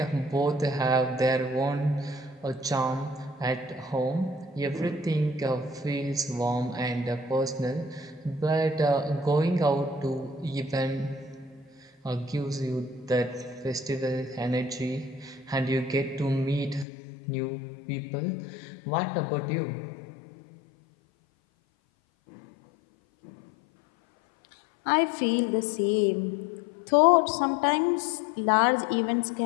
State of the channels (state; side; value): drops out; right; at 16.9 s